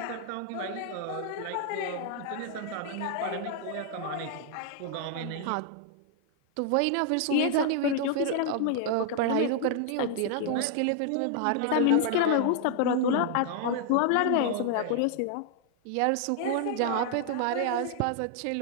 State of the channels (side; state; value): both; different; correlation 0.00